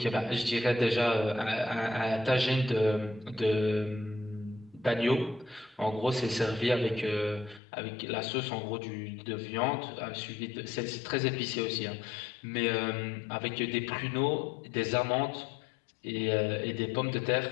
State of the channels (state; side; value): drops out; right; at 7.6 s